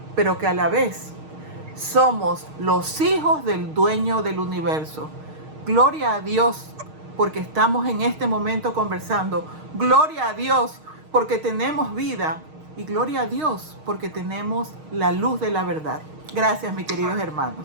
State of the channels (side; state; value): left; late; 6.4 ms